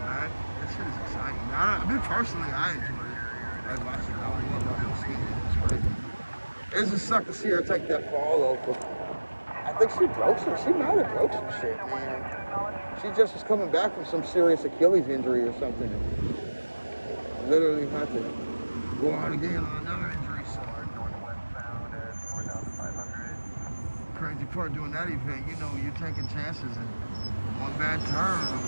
back, that shit is exciting. I mean, personally, I enjoy it. Like watching it, I love downhill skiing. It's great. It just sucked to see her take that fall though. I think she broke some. She might have broke some shit, man. She just was coming back from some serious Achilles injury or something. And literally had to go out again on another injury. So crazy part doing that event, you know, you're taking chances and one bad turn,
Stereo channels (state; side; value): inverted; both; correlation -1.00